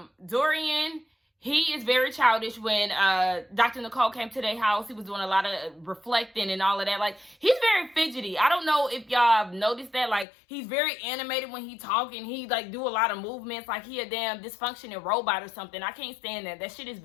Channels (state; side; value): drops out; right; at 10.2 s